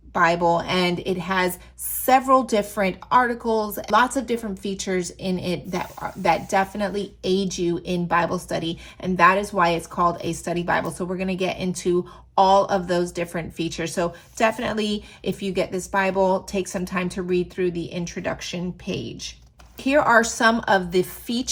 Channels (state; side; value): identical; both; correlation 1.00